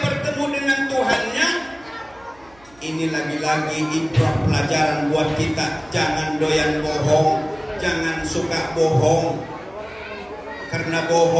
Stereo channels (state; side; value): noise; right; hum, 28 dB below the sound